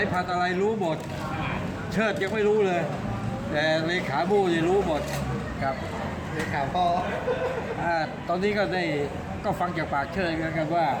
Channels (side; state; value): both; identical; correlation 1.00